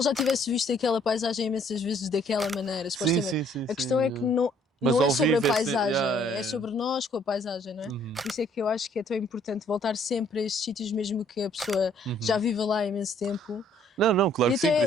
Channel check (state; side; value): normal; both; correlation 0.62